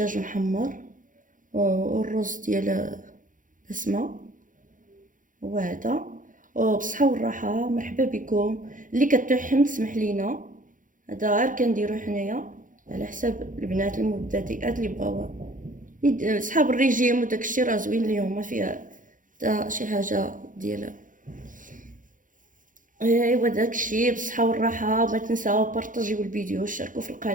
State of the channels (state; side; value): late; left; 0.38 ms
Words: محمر والرز ديال بسمه. وهذا وبصحه والراحه. مرحبا بكم. اللي كتوحم تسمح لينا، هذا غير كنديرو حنايا على حساب البنات المبتدئات اللي بغاو صحاب الريجيم وداكشي راه زوين ليهم، ما فيها حتى شي حاجه ديال. ايوا داكشي بالصحه والراحه. ما تنساو بارطاجيو الفيديو وشاركوا في